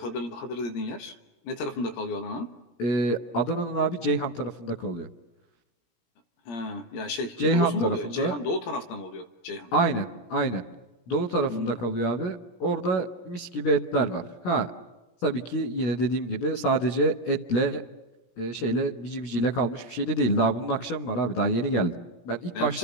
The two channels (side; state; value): right; late; 17 ms